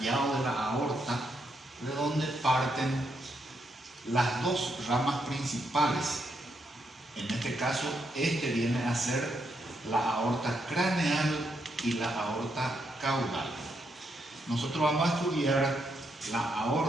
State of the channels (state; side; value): normal; both; correlation 0.79